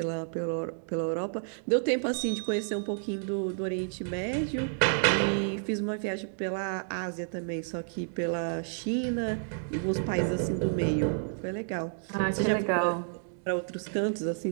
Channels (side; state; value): left; silent; digital silence